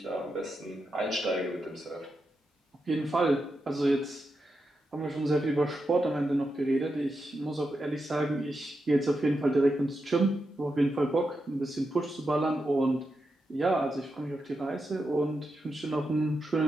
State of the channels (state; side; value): normal; both; correlation 0.87